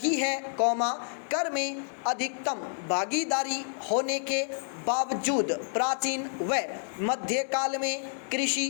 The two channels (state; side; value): silent; right; digital silence